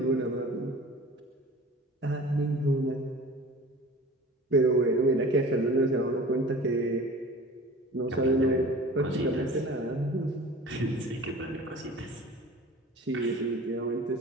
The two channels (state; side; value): normal; both; correlation 0.42